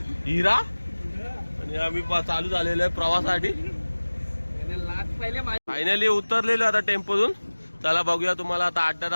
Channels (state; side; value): inverted; both; correlation -1.00